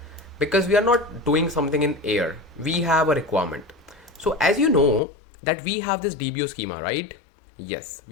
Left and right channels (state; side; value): drops out; right; at 5.0 s